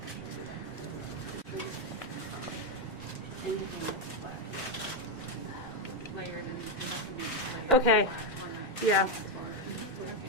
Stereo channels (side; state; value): both; normal; correlation 0.04